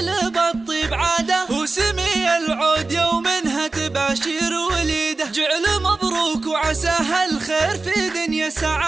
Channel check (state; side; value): quieter; left; 3.6 dB